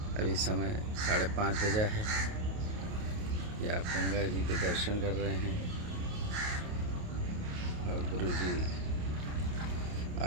अभी समय 5:30 बजा है। ये आप गंगा जी के दर्शन कर रहे हैं और गुरु जी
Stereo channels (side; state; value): left; late; 28 ms